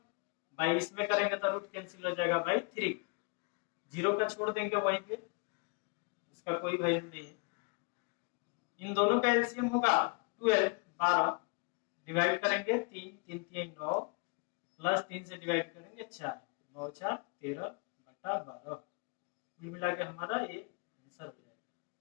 बाई इसमें करेंगे तो रूट कैंसिल हो जाएगा बाई 3, 0 का छोड़ देंगे वहीं पे, उसका कोई वैल्यू नहीं है। इन दोनों का एलसीएम होगा 12 डिवाइड करेंगे 3 3 9 प्लस 3 से डिवाइड करेंगे 4 9 4 13/12, कुल मिला के हमारा ये आंसर हो जाएगा।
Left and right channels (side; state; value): right; quieter; 32.2 dB